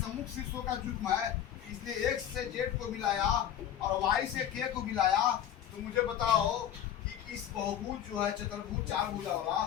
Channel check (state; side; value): quieter; right; 10.3 dB